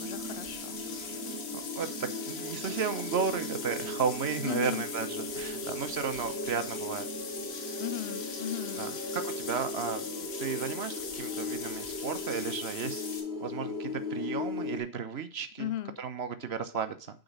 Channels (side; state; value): right; late; 3.0 ms